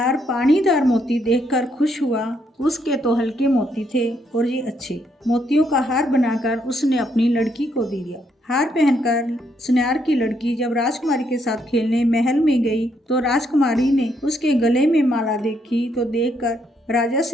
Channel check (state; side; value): normal; both; correlation 0.74